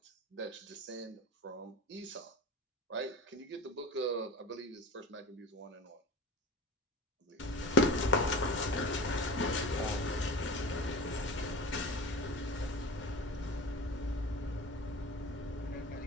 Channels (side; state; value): both; normal; correlation 0.35